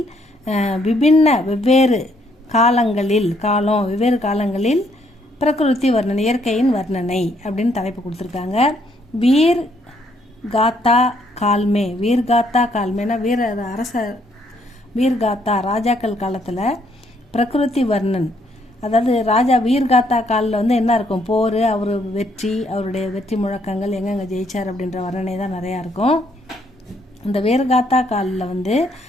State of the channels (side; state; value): both; normal; correlation 0.70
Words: வெவ்வேறு காலங்களில் பிரகிருதி வர்ணனை, இயற்கையின் வர்ணனை அப்படின்னு தலைப்பு கொடுத்துருக்காங்க. வீர் காத்தா கால்மேனா வீர்காத்தா ராஜாக்கள் காலத்தில் பிரகிருதி வர்ணன், அதாவது ராஜா வீர்காத்தா காலில் என்ன இருக்கும், போர், அவர் வெற்றி, அவருடைய வெற்றி முழக்கங்கள், எங்கெங்க ஜெயிச்சார் அப்படின்ற வர்ணனை தான் நிறையா இருக்கும். இந்த வீர்காத்தா காலில்